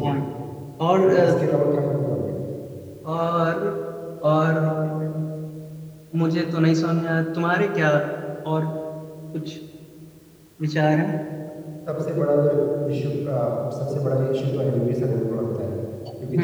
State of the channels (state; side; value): identical; both; correlation 1.00